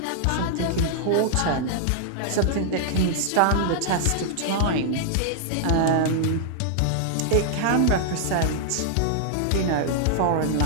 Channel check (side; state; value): both; different; correlation -0.01